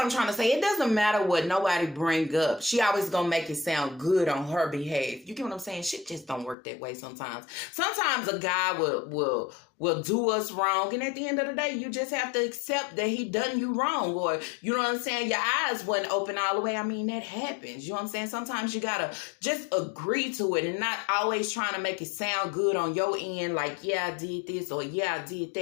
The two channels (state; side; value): drops out; right; at 6.6 s